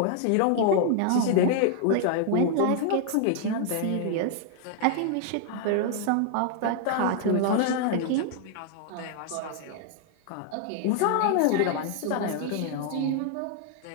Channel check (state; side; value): different; both; correlation 0.00